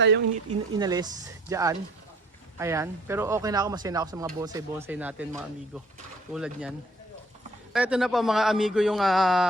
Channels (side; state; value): both; normal; correlation 0.57